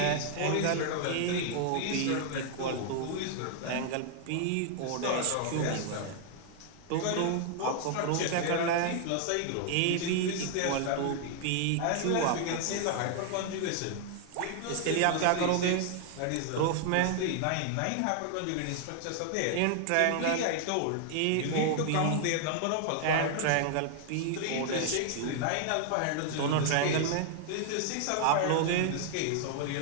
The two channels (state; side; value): different; both; correlation 0.00